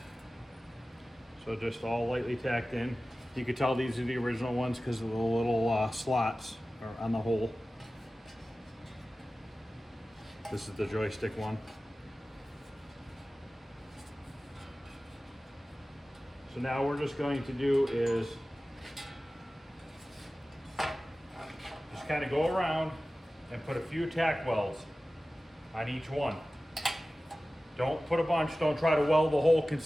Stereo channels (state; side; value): normal; both; correlation 0.96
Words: So just all lightly tacked in. You can tell these are the original ones because of the little slots on the hole. This is the joystick one. So now we're just going to do is just kind of go around and put a few tack welds on each one. Don't put a bunch, don't try to weld the hole